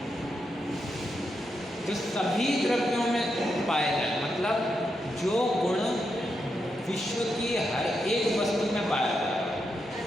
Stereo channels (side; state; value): both; normal; correlation 0.84